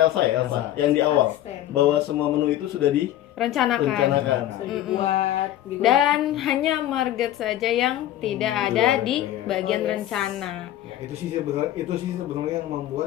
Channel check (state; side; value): quieter; right; 13.2 dB